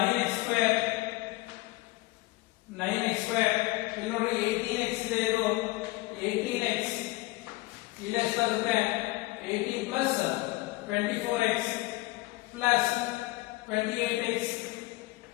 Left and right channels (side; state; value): right; quieter; 21.0 dB